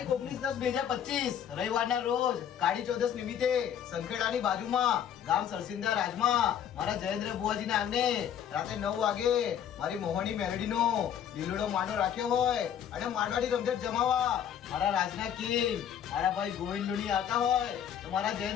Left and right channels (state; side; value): quieter; right; 9.2 dB